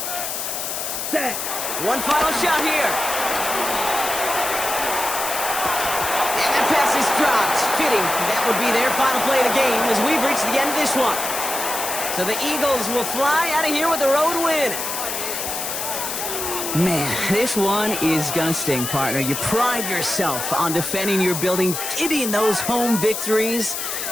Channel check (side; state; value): left; noise; hiss, 4 dB below the sound